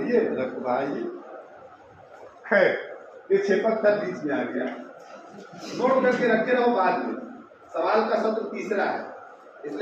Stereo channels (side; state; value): both; identical; correlation 1.00